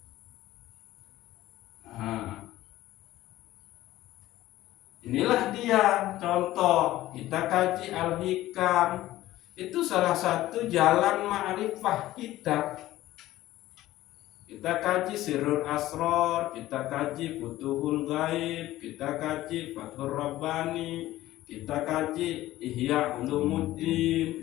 Nah, inilah dia contoh. Kita kaji Al-Hikam. Itu salah satu jalan ma'rifah kita. Kita kaji Sirrul Asrar, kita kaji Futuhul Ghaib, kita kaji Fathur Rabbani, kita kaji Ihya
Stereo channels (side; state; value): right; quieter; 15.5 dB